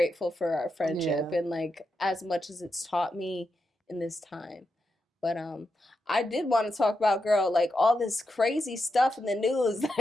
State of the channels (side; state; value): both; normal; correlation 0.86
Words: for our friendship and like as much as it's taught me in this time. But I did want to talk about, girl, like all this crazy stuff in the news,